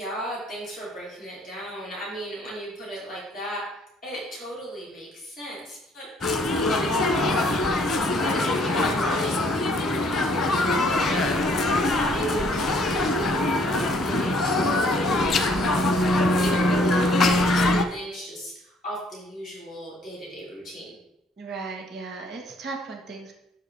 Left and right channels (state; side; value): normal; both; correlation 0.63